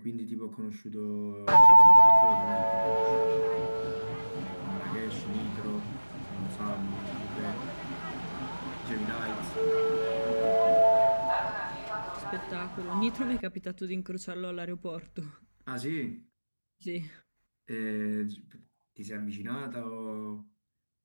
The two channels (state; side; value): inverted; both; correlation -1.00